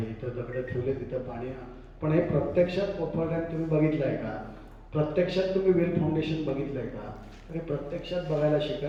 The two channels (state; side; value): identical; both; correlation 1.00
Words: इथं दगडं ठेवले तिथं पाणी. पण हे प्रत्यक्षात कोपर रॅम्प तुम्ही बघितलं आहे का? प्रत्यक्षात तुम्ही वेल फाउंडेशन बघितलं आहे का? तर हे प्रत्यक्षात बघायला